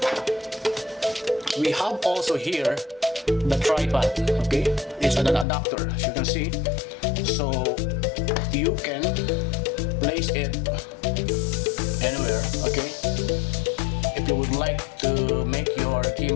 we have also here the tripod. Okay, it's an adapter, as you can see, so you can place it anywhere. Okay, if you would like to make your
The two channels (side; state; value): right; drops out; at 5.5 s